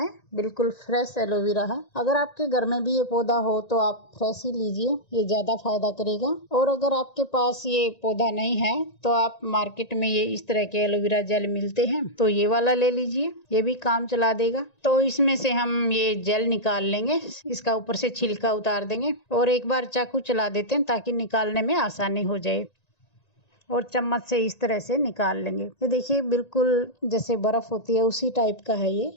बिल्कुल फ्रेश एलोवेरा है। अगर आपके घर में भी ये पौधा हो तो आप फ्रेश ही लीजिए, ये ज्यादा फायदा करेगा। और अगर आपके पास ये पौधा नहीं है तो आप मार्केट में ये इस तरह के एलोवेरा जेल मिलते हैं, तो ये वाला ले लीजिए, ये भी काम चला देगा। तो इसमें से हम ये जेल निकाल लेंगे, इसका ऊपर से छिलका उतार देंगे और एक बार चाकू चला देते हैं ताकि निकालने में आसानी हो जाए। और चम्मच से इस तरह से निकाल लेंगे। ये देखिए, बिल्कुल जैसे बर्फ होती है उसी टाइप का है ये।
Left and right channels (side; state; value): right; late; 1.9 ms